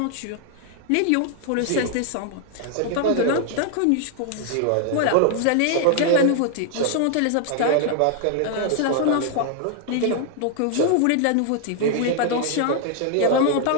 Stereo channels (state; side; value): different; both; correlation 0.00